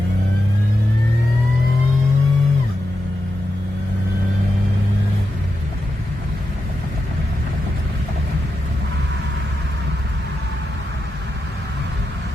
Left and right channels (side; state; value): both; normal; correlation 0.88